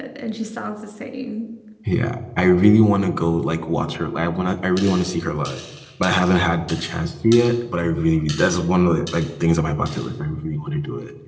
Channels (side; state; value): both; identical; correlation 1.00